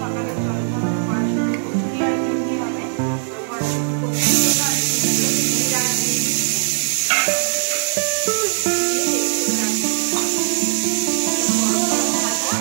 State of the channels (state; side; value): silent; left; digital silence